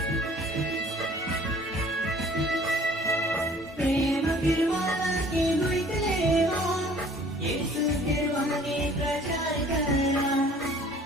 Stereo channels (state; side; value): normal; both; correlation 0.53